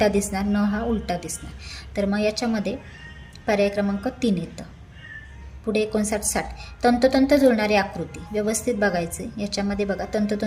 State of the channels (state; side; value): identical; both; correlation 1.00